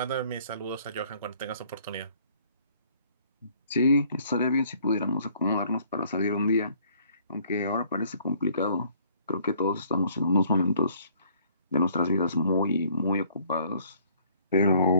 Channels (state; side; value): inverted; both; correlation -0.60